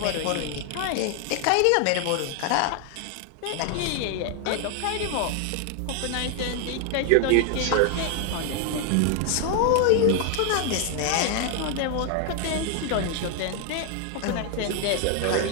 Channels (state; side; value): different; both; correlation 0.01